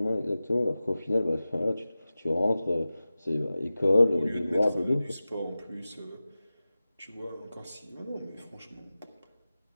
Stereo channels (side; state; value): both; inverted; correlation -0.96